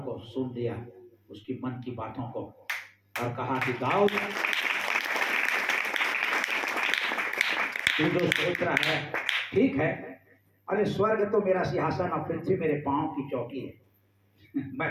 सुन लिया, उसकी मन की बातों को, और कहा कि दाऊद, तू जो सोच रहा है ठीक है, अरे स्वर्ग तो मेरा सिंहासन और पृथ्वी मेरे पांव की चौकी है,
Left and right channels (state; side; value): identical; both; correlation 1.00